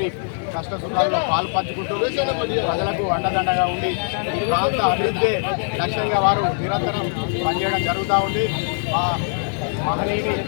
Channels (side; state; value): right; silent; 64 dB below the other